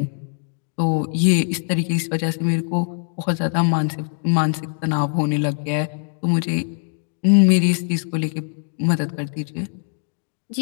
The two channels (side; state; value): right; silent; 64 dB below the other